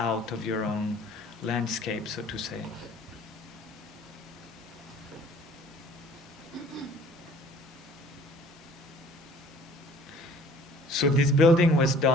of your own landscape, so to say. So this building was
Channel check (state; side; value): normal; both; correlation 0.52